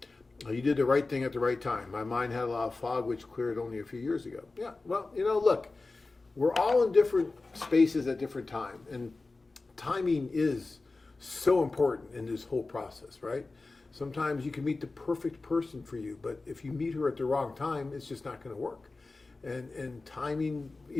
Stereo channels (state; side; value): quieter; right; 3.5 dB